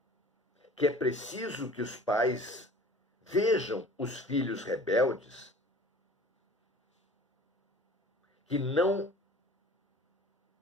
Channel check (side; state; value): both; normal; correlation 0.45